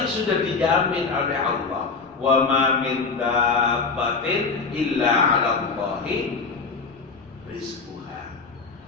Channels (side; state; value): right; quieter; 4.6 dB